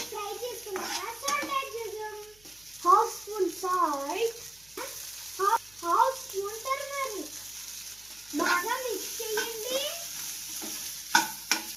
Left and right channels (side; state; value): right; noise; hum, 28 dB below the sound